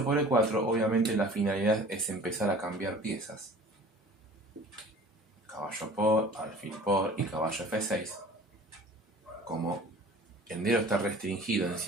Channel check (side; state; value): both; normal; correlation 0.46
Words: por E4, obviamente la finalidad es empezar a cambiar piezas. Caballo por, alfil por y caballo F6. Como el negro está restringido en